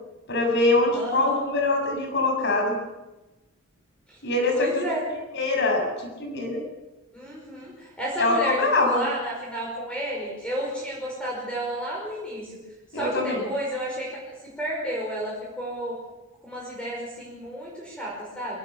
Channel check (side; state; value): both; normal; correlation 0.05